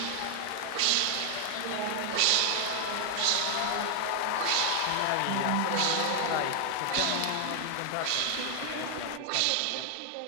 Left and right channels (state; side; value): different; both; correlation 0.00